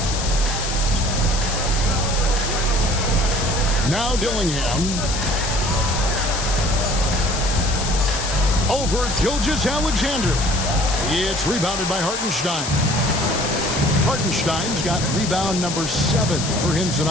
Now Dillingham. Over Gilgeous-Alexander. It's rebounded by Hartenstein. Hartenstein's got rebound number 7 for him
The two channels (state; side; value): noise; left; hiss, 5 dB below the sound